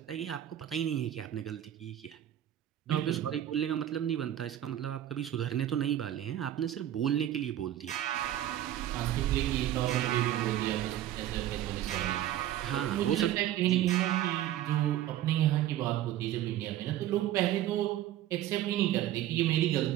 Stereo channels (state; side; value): quieter; left; 12.4 dB